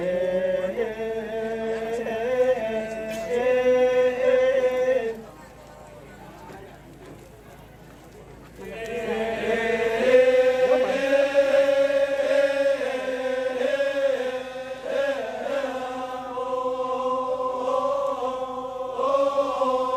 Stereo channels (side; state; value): both; identical; correlation 1.00